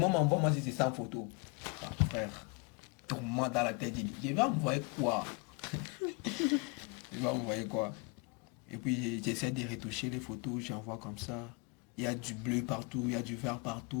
envoie-moi si c'est 100 photos. Ah, frère, tourne-moi dans la tête. Je vais envoyer quoi? Je vais envoyer quoi? Et puis j'essaie de retoucher les photos, j'envoie comme ça. Il y a du bleu partout, il y a du vert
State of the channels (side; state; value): right; quieter; 29.9 dB